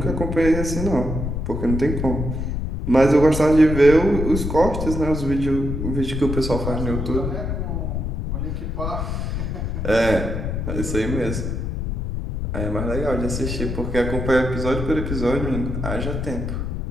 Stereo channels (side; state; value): left; noise; rumble, 3 dB below the sound